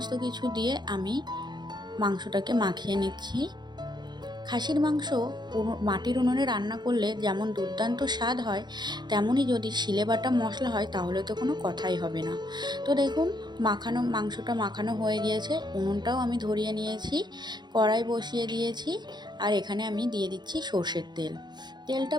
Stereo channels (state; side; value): late; left; 0.21 ms